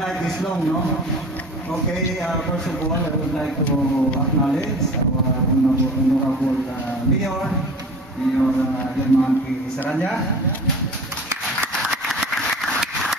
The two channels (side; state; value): both; normal; correlation 0.40